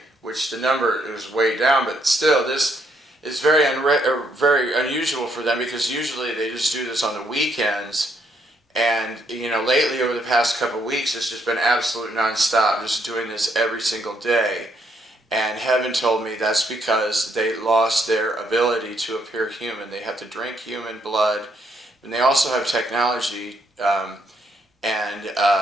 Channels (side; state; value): both; normal; correlation 0.73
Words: which the number was way down, but still this is very unusual for them, because usually they just do this on the weekends, and lately over the past couple of weeks it's just been absolute nonstop, just doing this every single day. And heaven told me that's because they lost their ability to appear human. They have to drink human blood, and they also have technology, but